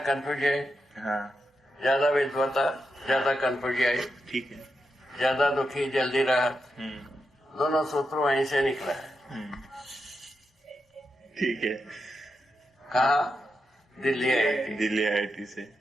कंफ्यूज है, ज्यादा विद्वता, ज्यादा कंफ्यूज आई, ठीक है, ज्यादा दुखी जल्दी राहत, दोनों सूत्र वहीं से निकला है। ठीक है, कहा, दिल्ली IIT, दिल्ली IIT से।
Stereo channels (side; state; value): both; normal; correlation 0.86